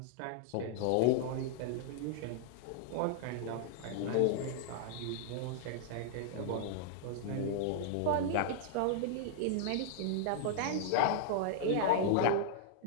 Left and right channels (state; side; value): different; both; correlation -0.01